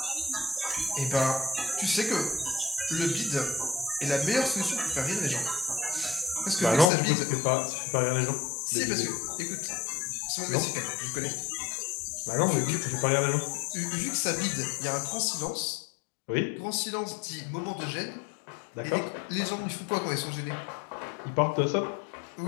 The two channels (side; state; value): right; drops out; at 6.9 s